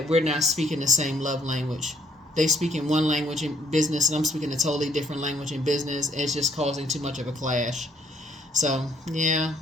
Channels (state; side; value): normal; both; correlation 0.67